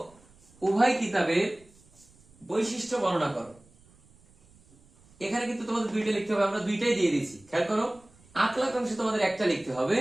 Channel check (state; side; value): noise; right; rumble, 29 dB below the sound